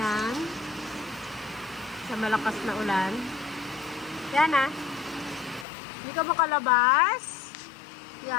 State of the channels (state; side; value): drops out; right; at 5.7 s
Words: Sa malakas na ulan. Yan ah. Hindi ka makalabas.